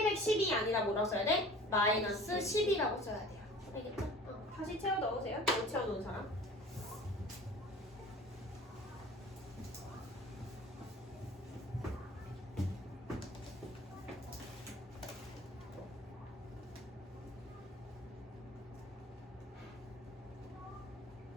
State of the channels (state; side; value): normal; both; correlation 0.44